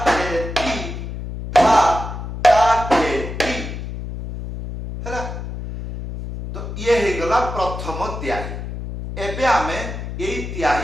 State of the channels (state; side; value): noise; left; hum, 7 dB below the sound